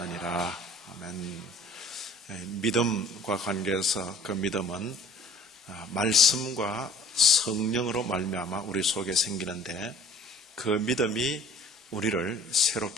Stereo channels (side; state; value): both; normal; correlation 0.52